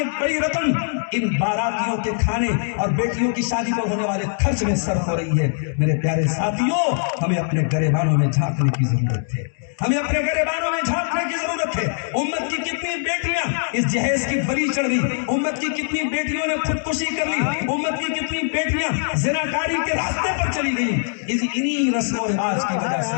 بڑی رقم ان باراتیوں کے کھانے اور بیٹیوں کی شادی پر ہونے والے خرچ میں صرف ہو رہی ہے. میرے پیارے ساتھیوں، ہمیں اپنے گریبانوں میں جھانکنے کی ضرورت ہے، ہمیں اپنے گریبانوں میں جھانکنے کی ضرورت ہے. امت کی کتنی بیٹیاں اس جہیز کی بلی چڑھ گئی، امت کی کتنی بیٹیوں نے خودکشی کر لی، امت کی کتنی بیٹیاں زناکاری کے راستے پر چلی گئی انہی رسم و رواج کی وجہ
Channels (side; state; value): right; silent; digital silence